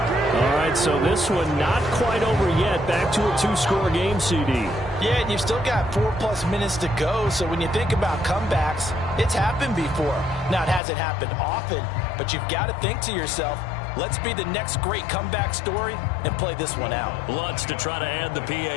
All right, so this one not quite over yet. Back to a 2-score game, CD. Yeah, and you've still got 4+ minutes to go, so when you think about comebacks, it's happened before. Now, it hasn't happened often, but you've got to think to yourself, Let's be the next great comeback story and play this one out. Lutz to try to add the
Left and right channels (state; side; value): drops out; right; at 10.8 s